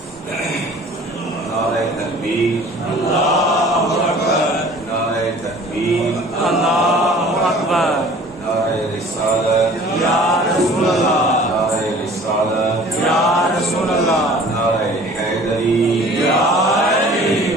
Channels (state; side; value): normal; both; correlation 0.48